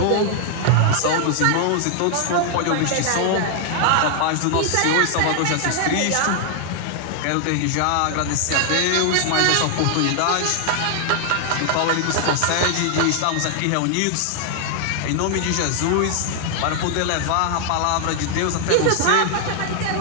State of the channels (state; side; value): different; both; correlation 0.00